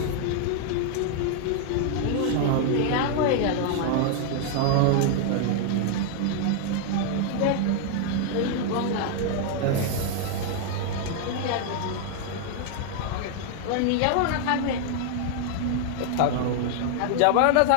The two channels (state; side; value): different; both; correlation 0.00